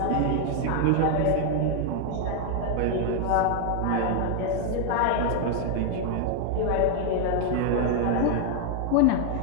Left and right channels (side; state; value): both; different; correlation 0.00